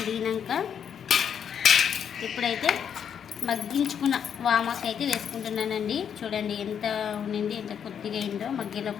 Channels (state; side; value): quieter; right; 8.1 dB